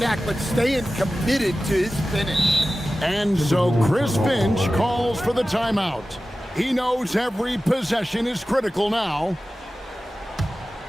but staying committed to his finish. And so Chris Finch calls for the timeout. He knows every possession is critical now.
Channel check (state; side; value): normal; both; correlation 0.95